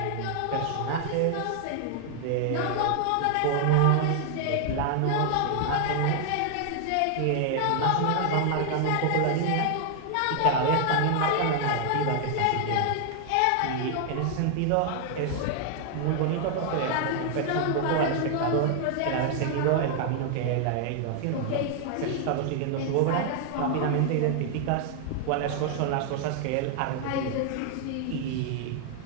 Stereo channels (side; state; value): both; different; correlation 0.00